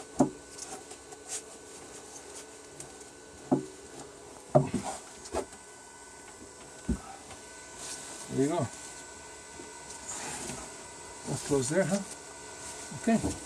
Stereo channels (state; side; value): identical; both; correlation 1.00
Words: There you go. That's close there, huh? Okay.